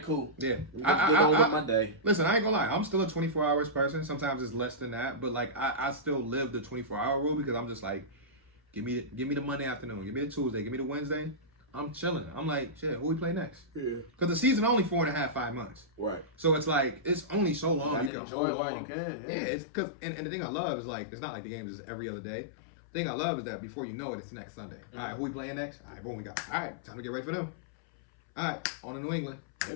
cool. Yeah. Get on with my day. Listen, I ain't gonna lie. I'm still a 24 hours person. Sometimes it's less than that. But, like, I still live the 24-hour rule because I'm just like, give me the Monday afternoon. Give me the Tuesday. Give me the Wednesday. I'm chilling. I'm like, shit, who we play next? Yeah. Because the season only 4.5, 5 months. Right. So it's like, it's only so long you can enjoy it while you can. Yeah, it's because, and the thing I love is, like, it's not like the game is every other day. The thing I love is that before you know it, it's next Sunday. Mm-hmm. All right, who we playing next? All right, boom, we got. All right, time to get ready for them. All right, on to New England.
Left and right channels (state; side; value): drops out; right; at 18.1 s